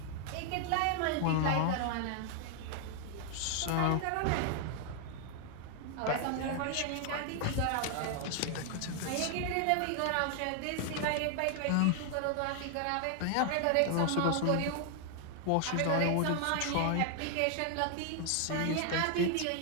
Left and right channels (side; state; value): both; different; correlation 0.00